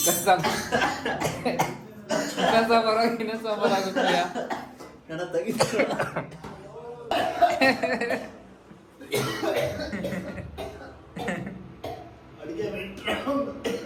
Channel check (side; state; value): both; identical; correlation 1.00